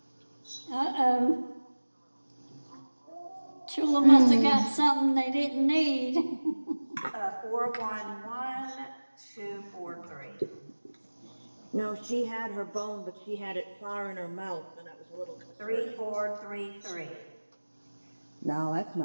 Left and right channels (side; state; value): both; inverted; correlation -1.00